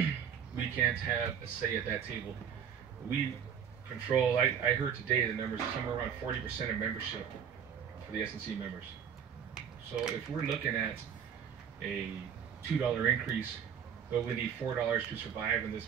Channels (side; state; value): left; quieter; 8.0 dB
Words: we can't have a say at that table. We control, I heard today the numbers are somewhere around 40% of membership for the S&C members. So if we're looking at a $2 increase, but we need $4 to survive in this